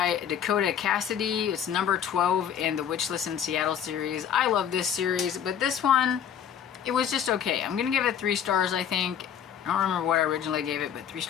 Dakota Cassidy. It's number 12 in the Witchless in Seattle series. I love this series, but this one, it was just okay. I'm gonna give it 3 stars, I think. I don't remember what I originally gave it, but 3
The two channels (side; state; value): right; quieter; 8.8 dB